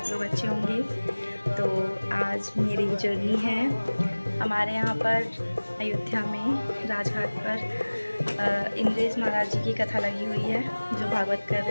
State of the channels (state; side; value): inverted; both; correlation -1.00